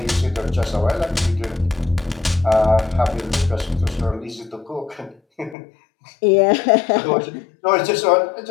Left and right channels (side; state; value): right; drops out; at 5.6 s